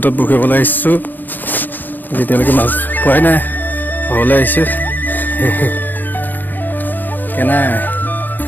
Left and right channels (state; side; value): late; right; 0.087 ms